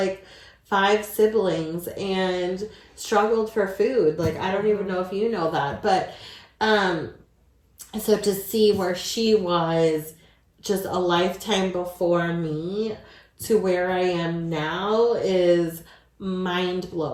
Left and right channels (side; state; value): both; identical; correlation 1.00